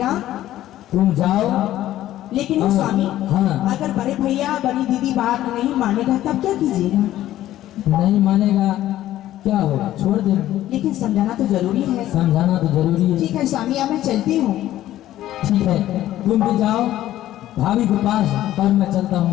तुम जाओ। लेकिन हाँ, स्वामी, हाँ। अगर बड़े भैया बड़ी दीदी बात नहीं मानेगा तब क्या कीजिएगा? नहीं मानेगा क्या होगा, छोड़ दे। लेकिन समझाना तो जरूरी है। समझाना तो जरूरी है। ठीक है स्वामी, अब मैं चलती हूँ। ठीक है, तुम भी जाओ भाभी के पास और मैं चलता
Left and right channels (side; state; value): right; quieter; 13.6 dB